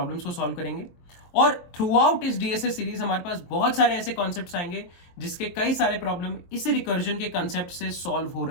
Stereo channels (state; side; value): late; right; 23 ms